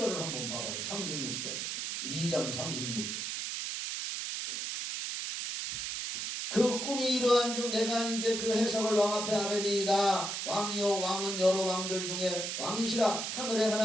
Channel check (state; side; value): noise; right; hiss, 3 dB below the sound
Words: 한번 봐봐요. 36절. 2장 36절. 그 꿈이 이러한즉 내가 이제 그 해석을 왕 앞에 아뢰리이다. 왕이요 왕은 여러 왕들 중에 왕이시라. 하늘의